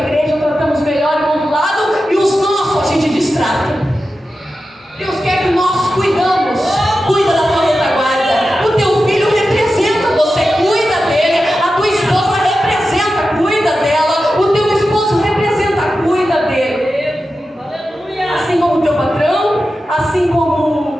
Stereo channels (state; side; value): normal; both; correlation 0.92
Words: tratamos melhor em um lado e os nossos a gente distrata. Deus quer que nós cuidamos. Cuida da tua retaguarda. O teu filho representa você, cuida dele. A tua esposa representa, cuida dela. O teu esposo representa, cuida dele. Assim como o teu patrão, assim